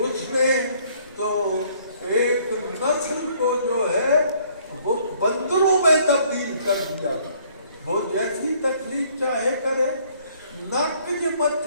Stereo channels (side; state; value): both; inverted; correlation -0.62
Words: نے تو ایک نسل کو جو ہے وہ بندروں میں تبدیل کر دیا. وہ جیسی تکلیف چاہے کرے. نک جے